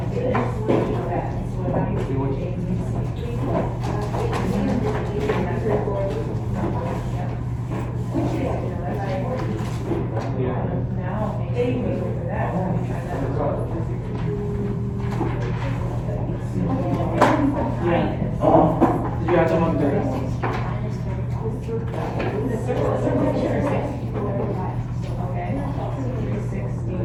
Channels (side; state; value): both; identical; correlation 1.00